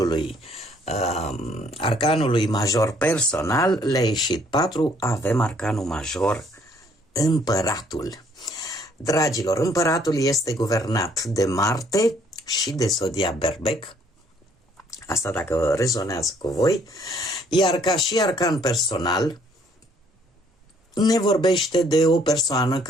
arcanului major personal, le-a ieșit 4, avem arcanul major împăratul. Dragilor, împăratul este guvernat de Marte și de zodia Berbec, asta dacă rezonează cu voi, iar ca și arcan personal ne vorbește de o persoană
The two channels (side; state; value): both; normal; correlation 0.64